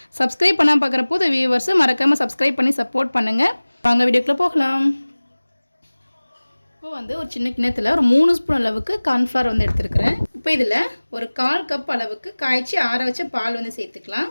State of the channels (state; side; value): inverted; both; correlation -1.00